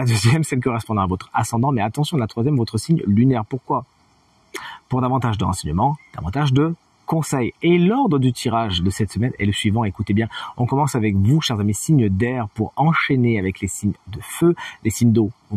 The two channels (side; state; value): both; identical; correlation 1.00